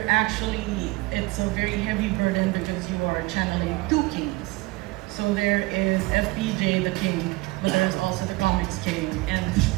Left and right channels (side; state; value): left; quieter; 21.9 dB